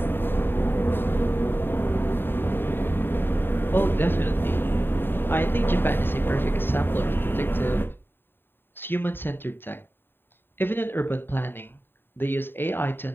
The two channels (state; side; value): late; right; 0.10 ms